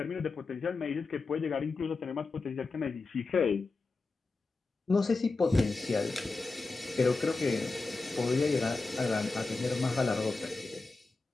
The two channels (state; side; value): quieter; right; 3.8 dB